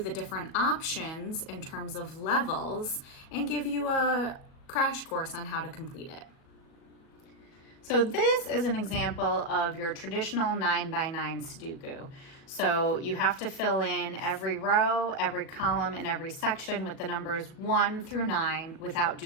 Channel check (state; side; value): late; right; 37 ms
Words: different options in terms of levels and give you a crash course on how to complete it. So this is an example of your traditional 9x9 Sudoku. So you have to fill in every row, every column, and every section with the numbers 1 through 9 without